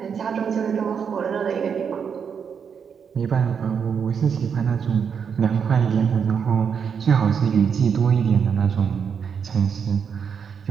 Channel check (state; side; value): quieter; left; 6.9 dB